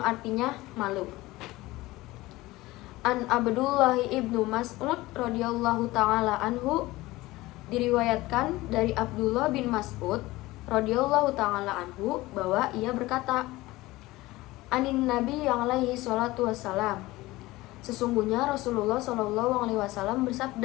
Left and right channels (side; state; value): right; quieter; 19.1 dB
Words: malu. An Abdullah ibnu Mas'ud radhiyallahu ta'ala anhu, diriwayatkan dari Abdullah bin Mas'ud radhiyallahu ta'ala anhu bahwa ia berkata, Anin Nabi yang alaihi salatu wassalam, sesungguhnya Rasulullah sallallahu alaihi wasallam